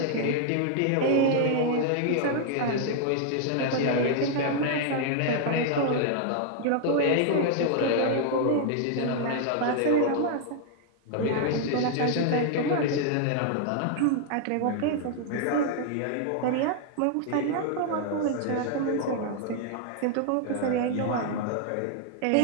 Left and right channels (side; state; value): both; different; correlation 0.00